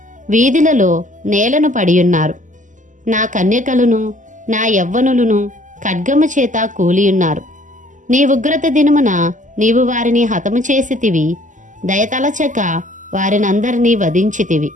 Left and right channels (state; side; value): late; left; 0.37 ms